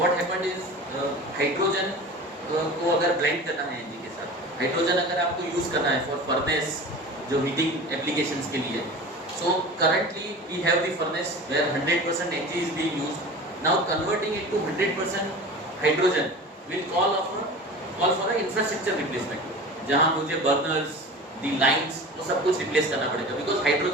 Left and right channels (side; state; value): both; normal; correlation 0.35